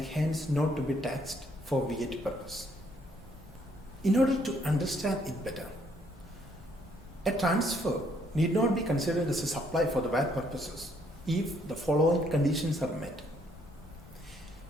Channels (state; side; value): normal; both; correlation 0.68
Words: hence not to be taxed for VAT purpose. In order to understand it better, a transfer need not be considered as a supply for the VAT purposes if the following conditions are met.